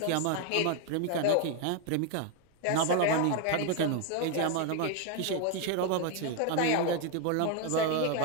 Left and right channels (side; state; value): both; different; correlation 0.01